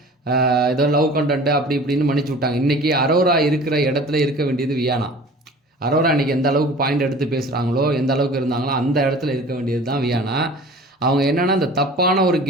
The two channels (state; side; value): normal; both; correlation 0.43